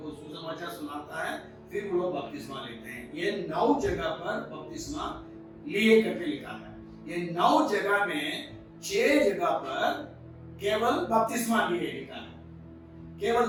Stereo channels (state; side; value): identical; both; correlation 1.00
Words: सुसमाचार सुनाता है, फिर वो लोग बपतिस्मा लेते हैं। ये 9 जगह पर बपतिस्मा लिए करके लिखा है। ये 9 जगह में 6 जगह पर केवल बपतिस्मा लिए लिखा है,